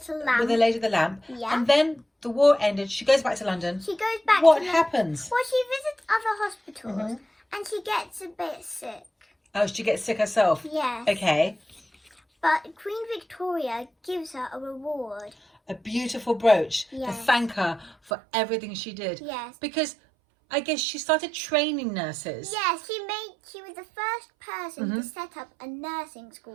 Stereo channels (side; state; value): left; drops out; at 18.1 s